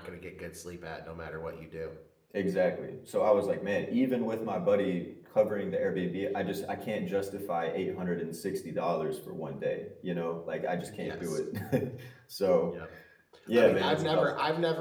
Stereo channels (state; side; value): identical; both; correlation 1.00